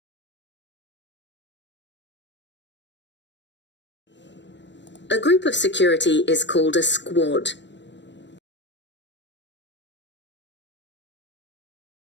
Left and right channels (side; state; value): right; late; 0.53 ms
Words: A group of security is called a squad.